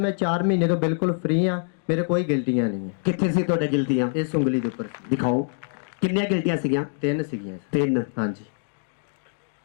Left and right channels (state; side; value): silent; right; digital silence